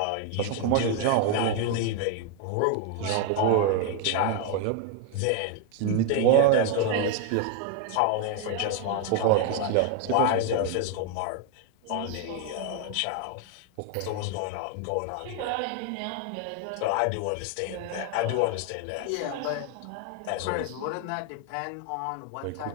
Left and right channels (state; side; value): different; both; correlation 0.00